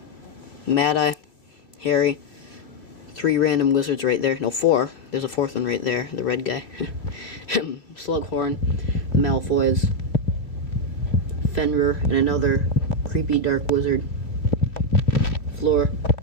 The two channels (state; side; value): late; right; 2.8 ms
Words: Mad-Eye, Harry, 3 random wizards right there. No, 4. There's a 4th one right there, the red guy. Slughorn, the Malfoys, Fenrir, and another creepy dark wizard. Fleur,